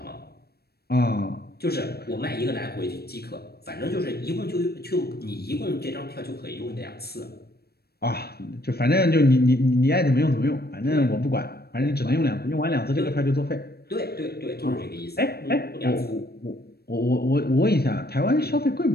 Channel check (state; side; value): late; right; 0.46 ms